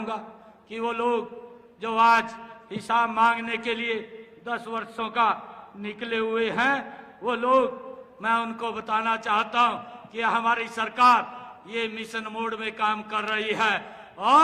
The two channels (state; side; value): identical; both; correlation 1.00